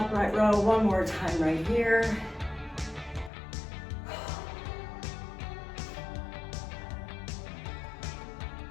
row one more time right here.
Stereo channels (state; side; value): drops out; right; at 3.3 s